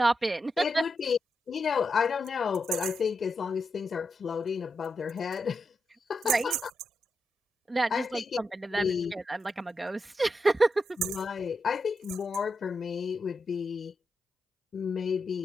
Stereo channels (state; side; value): normal; both; correlation 0.86